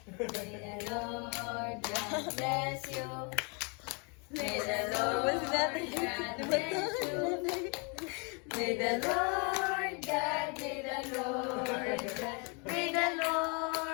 May the Lord God bless you. May the Lord God bless you. May the Lord God, may the Lord God, may the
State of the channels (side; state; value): right; quieter; 34.2 dB